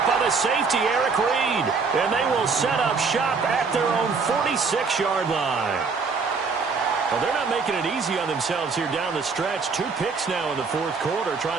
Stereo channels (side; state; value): left; quieter; 4.8 dB